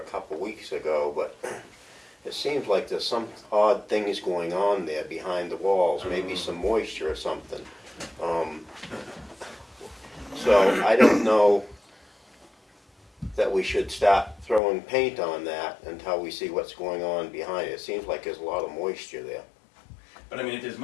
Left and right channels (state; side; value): drops out; right; at 14.6 s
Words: couple weeks ago, but it seems like there's some odd things going on there behind the walls, maybe some moisture or something. So I don't know that we should start throwing paint on that until we see what's going on behind it. It seems like there's a lot of moisture there. But I mean, if there's